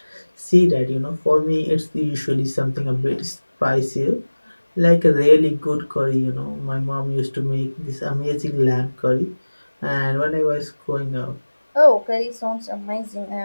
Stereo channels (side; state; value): both; inverted; correlation -1.00